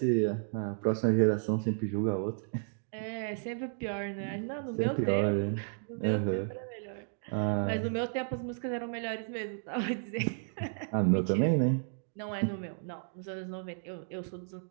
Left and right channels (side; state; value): left; silent; digital silence